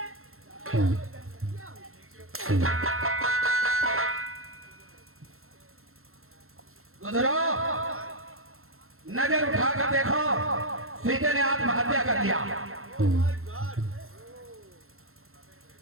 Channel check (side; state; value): left; late; 0.62 ms